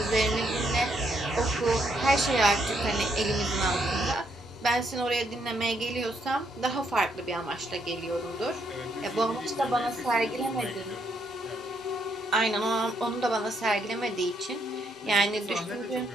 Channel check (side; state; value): both; normal; correlation 0.74